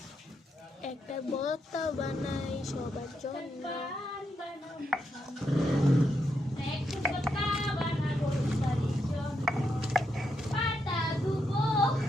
একটা ভর্তা বানাই সবার জন্য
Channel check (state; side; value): normal; both; correlation 0.81